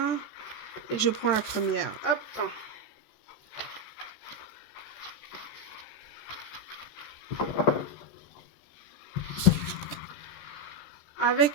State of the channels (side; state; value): right; late; 14 ms